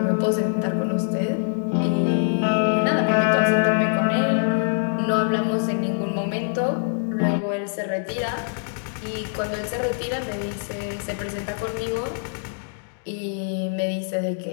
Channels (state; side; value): silent; right; digital silence